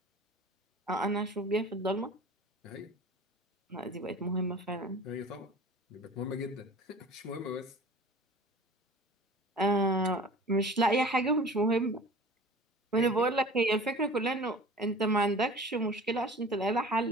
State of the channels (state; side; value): normal; both; correlation 0.42